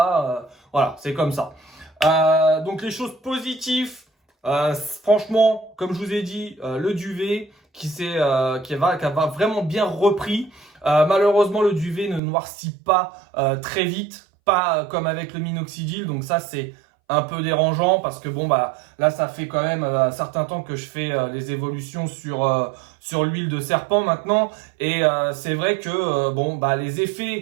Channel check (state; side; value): drops out; left; at 12.2 s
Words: Voilà, c'est comme ça. Donc, les choses positives, franchement, comme je vous ai dit, le duvet qui va vraiment bien repris. Malheureusement, le duvet ne noircit pas très vite, pas comme avec le minoxidil. Donc ça, c'est un peu dérangeant parce que bon là, ça fait quand même un certain temps que je fais les évolutions sur l'huile de serpent maintenant. Et c'est vrai que les